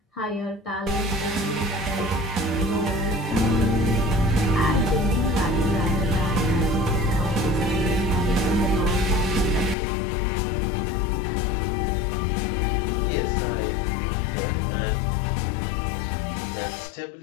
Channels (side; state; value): right; drops out; at 9.8 s